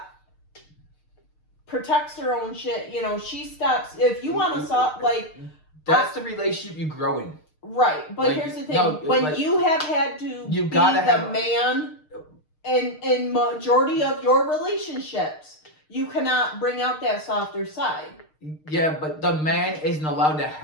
protects her own shit, you know, she stops. If you want to stop, like, That's the relationship you grow in. right. But Like, here's the thing: no, when like, you have had to you be gotta the have- man in majority of your relationships, you cannot bring out that softer side. Yeah, but the man isn't allowed to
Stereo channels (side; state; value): right; late; 6.5 ms